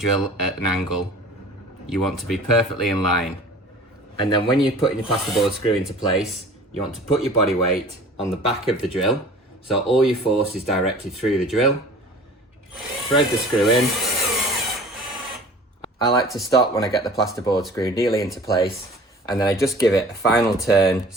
at an angle. You want to be perfectly in line. And then when you're putting your plasterboard screw into place, you want to put your body weight on the back of the drill, so all your force is directed through the drill. Thread the screw in. I like to stop when I get the plasterboard screw nearly into place, and then I just give it a final turn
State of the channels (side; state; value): both; normal; correlation 0.45